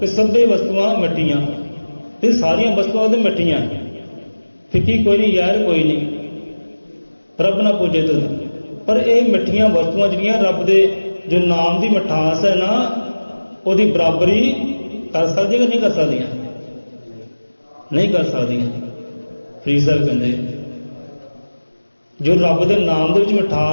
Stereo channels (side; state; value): both; inverted; correlation -1.00